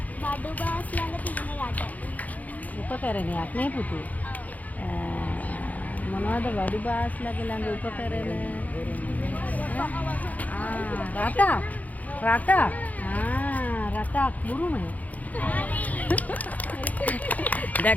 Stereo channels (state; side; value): late; right; 0.077 ms